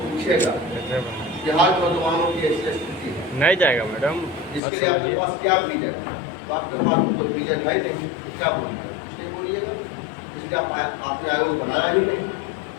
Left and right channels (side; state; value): right; drops out; at 4.6 s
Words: पूछेगा बिहार के नौजवानों की ऐसी स्थिति है, नहीं जाएगा मैडम, इसके लिए आपके पास क्या विजन है? तो आपके पास तो विजन है नहीं, क्या बोलिएगा? कुछ नहीं बोलिएगा, इसलिए आपने आयोग बनाया ही नहीं।